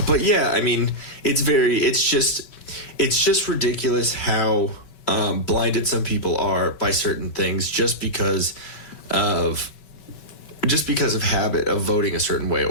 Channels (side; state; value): right; late; 5.2 ms